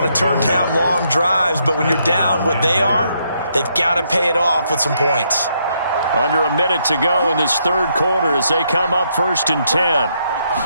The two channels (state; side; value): inverted; both; correlation -0.75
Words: to turn down long drives, but when you're down what they are, they've got to pay it off with some points. Under a minute to go in this third quarter as they come up 1st and 10.